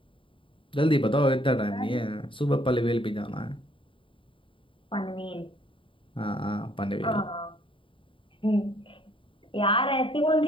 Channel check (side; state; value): right; late; 0.25 ms